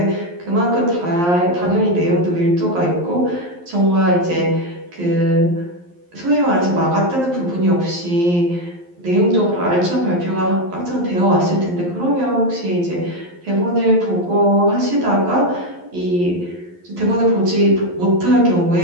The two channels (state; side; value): late; left; 11 ms